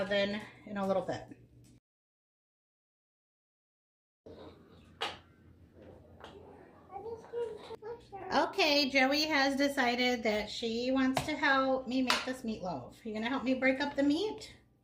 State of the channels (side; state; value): both; identical; correlation 1.00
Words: in a little bit. Okay, Joey has decided that she wants to help me make this meatloaf. You gonna help me break up the meat?